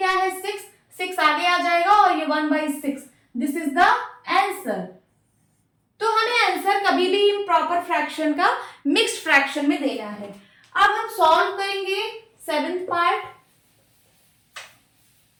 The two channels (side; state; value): both; identical; correlation 1.00